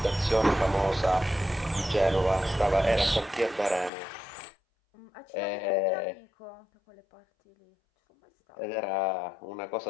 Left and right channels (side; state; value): right; drops out; at 3.9 s